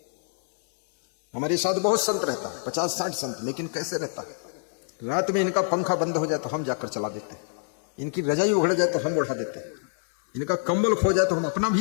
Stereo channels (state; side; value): silent; right; 61 dB below the other